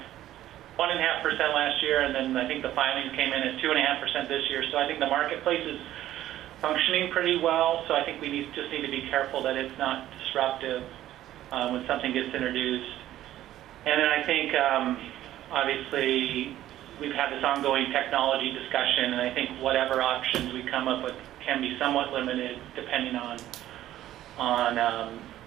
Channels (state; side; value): quieter; left; 13.3 dB